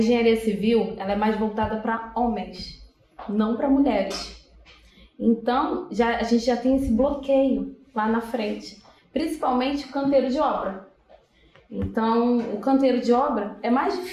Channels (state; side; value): identical; both; correlation 1.00